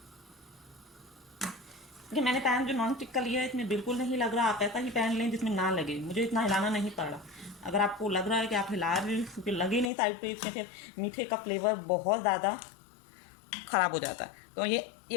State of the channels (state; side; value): drops out; right; at 9.9 s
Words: देखिए मैंने पैन जो नॉन स्टिक का लिया है इसमें बिल्कुल नहीं लग रहा। आप ऐसा ही पैन लें जिसमें ना लगे, मुझे इतना हिलाना नहीं पड़ा। अगर आपको लग रहा है कि आप हिला रहे हैं क्योंकि लगे नहीं साइड पे, इसमें फिर मीठे का फ्लेवर बहुत ज़्यादा ख़राब हो जाता है। तो ये